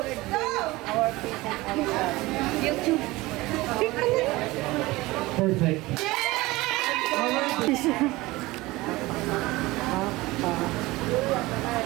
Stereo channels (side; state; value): left; quieter; 20.2 dB